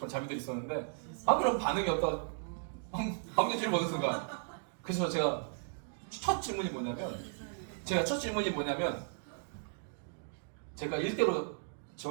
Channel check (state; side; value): silent; left; 54 dB below the other